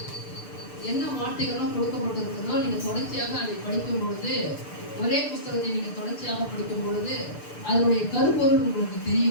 என்ன வார்த்தைகளும் கொடுக்கப்பட்டிருக்கிறதோ நீங்க தொடர்ச்சியாக அதை படிக்கும் பொழுது, ஒரே புஸ்தகத்தை நீங்க தொடர்ச்சியாக படிக்கும் பொழுது அதனுடைய கருப்பொருள் உங்களுக்கு தெரிய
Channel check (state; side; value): late; right; 6.8 ms